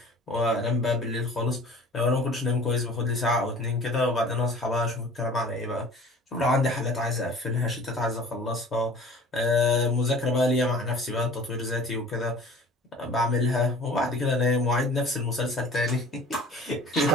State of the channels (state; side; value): normal; both; correlation 0.46